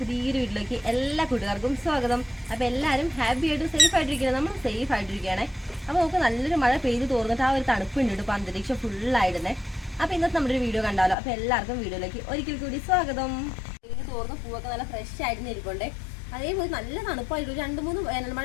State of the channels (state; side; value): drops out; right; at 11.2 s